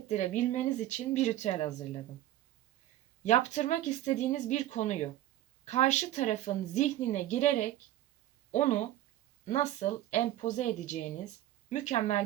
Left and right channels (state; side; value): quieter; left; 13.9 dB